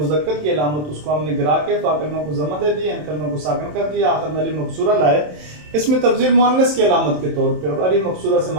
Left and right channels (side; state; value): left; late; 27 ms